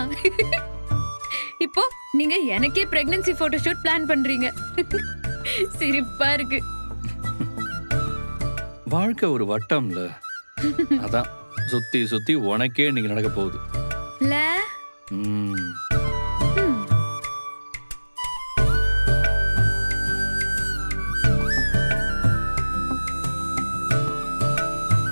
இப்போ நீங்க எனக்கே பிரெக்னன்சி போட்டோ ஷூட் பிளான் பண்றீங்க. சிரிப்பா இருக்கு. வாழ்க்கை ஒரு வட்டம்ல, அதான் சுத்தி சுத்தி உனக்கே இன்னைக்கு நடக்க போகுது. இல்ல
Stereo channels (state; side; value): inverted; both; correlation -1.00